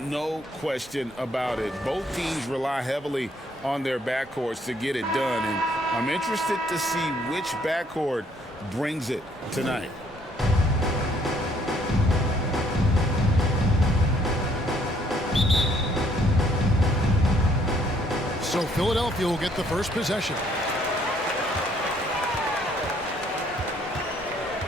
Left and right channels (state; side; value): normal; both; correlation 0.66